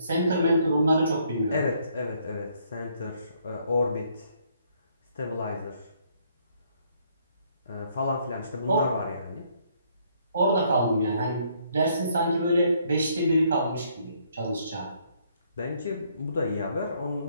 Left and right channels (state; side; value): inverted; both; correlation -0.68